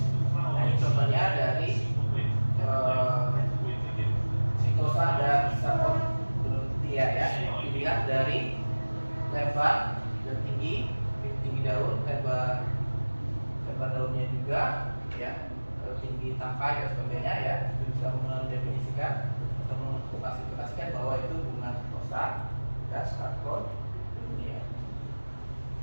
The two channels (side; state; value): both; inverted; correlation -1.00